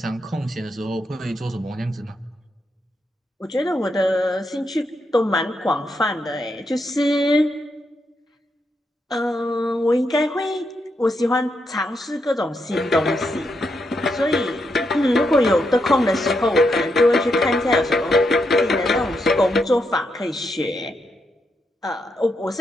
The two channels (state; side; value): normal; both; correlation 0.81